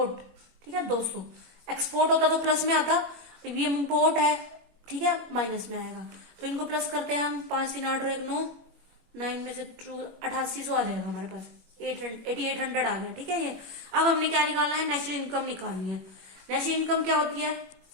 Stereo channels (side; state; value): left; late; 21 ms